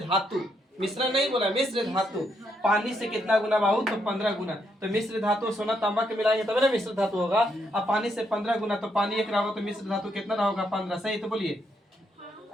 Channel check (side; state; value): both; normal; correlation 0.77